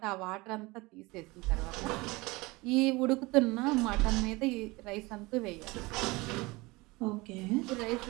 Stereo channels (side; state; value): left; quieter; 23.1 dB